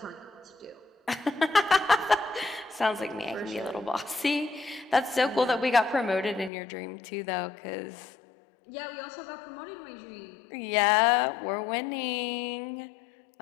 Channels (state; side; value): drops out; right; at 6.5 s